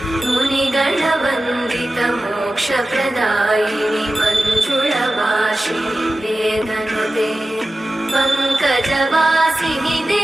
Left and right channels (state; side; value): normal; both; correlation 0.94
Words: मुनिगणवन्दित मोक्षप्रदायिनि मञ्जुळवासिनि वेदनुते पङ्कजवासिनि